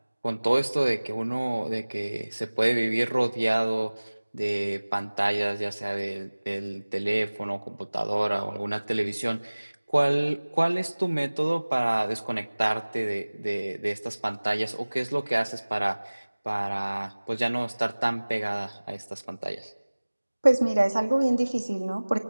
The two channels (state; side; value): inverted; both; correlation -1.00